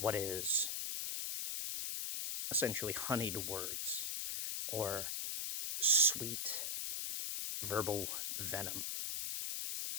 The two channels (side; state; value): left; noise; hiss, 1 dB below the sound